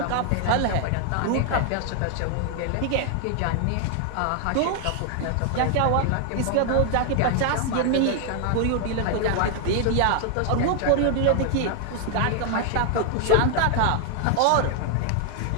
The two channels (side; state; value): both; different; correlation 0.00